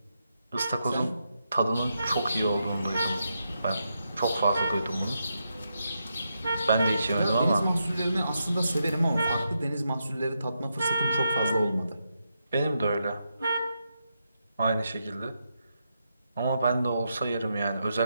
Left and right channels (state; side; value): inverted; both; correlation -0.84